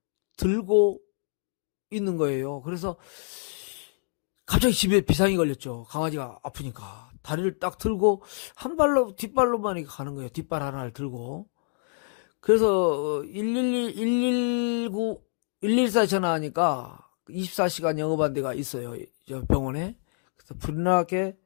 들고 있는 거예요. 그래서 갑자기 집에 비상이 걸렸죠. 강아지가 아프니까. 다리를 딱 들고 한 발로 뒷발로만 이렇게 가는 거예요. 뒷발 하나를 들고. 그래서 119, 114 전화하니까 24시간 영업한 데가 있어요. 저 병원에. 그래서 불나게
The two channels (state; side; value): silent; right; 60 dB below the other